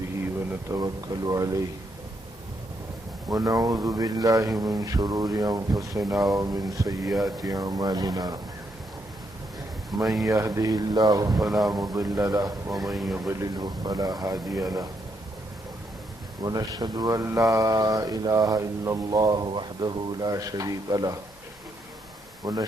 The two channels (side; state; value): both; normal; correlation 0.77